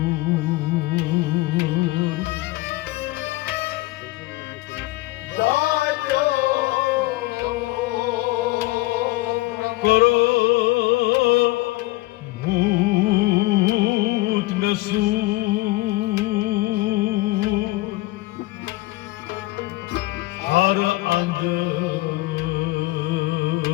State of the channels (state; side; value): quieter; right; 19.8 dB